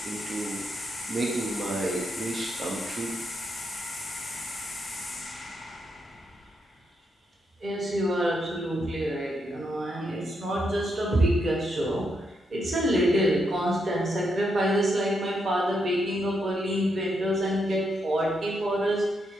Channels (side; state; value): both; normal; correlation 0.80